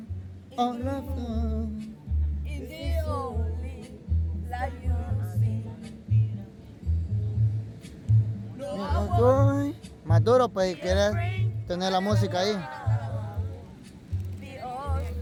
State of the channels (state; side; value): identical; both; correlation 1.00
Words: all alone. in the only light you see. Más duro pues si quieres tener la música ahí. Be all